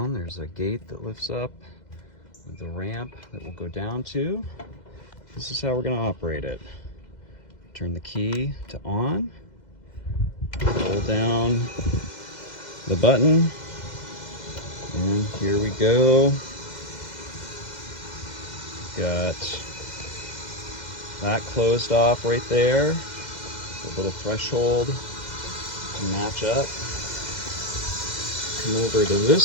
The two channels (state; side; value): late; right; 2.0 ms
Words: there's a gate that lifts up with the ramp that will go down to. This is how we're gonna operate it. Turn the key to on, hold down the button, and here we go. Got that closed off right there, a little threshold to match up. Come over to